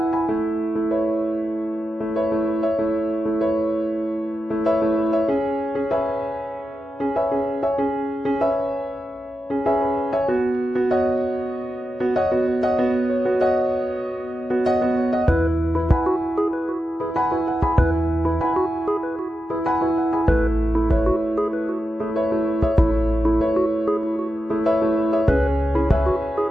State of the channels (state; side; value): normal; both; correlation 0.90